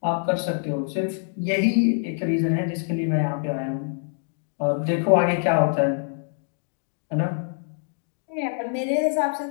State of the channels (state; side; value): silent; right; 62 dB below the other